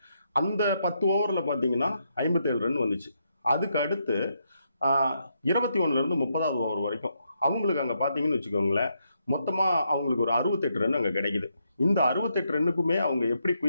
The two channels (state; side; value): inverted; both; correlation -0.79